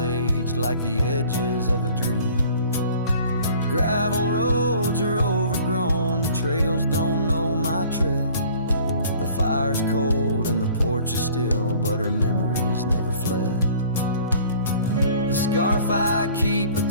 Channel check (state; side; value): inverted; both; correlation -0.51